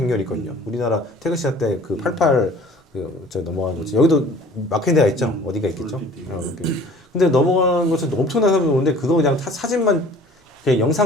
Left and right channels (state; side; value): normal; both; correlation 0.49